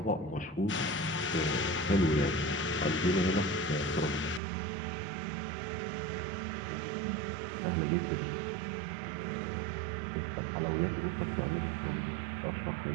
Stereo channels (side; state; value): left; drops out; at 4.4 s